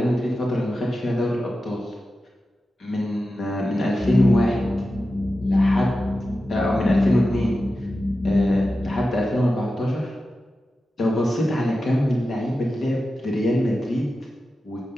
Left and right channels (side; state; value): both; normal; correlation 0.92